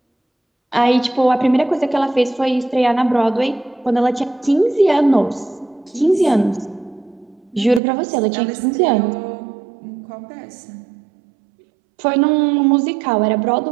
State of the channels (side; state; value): left; drops out; at 7.8 s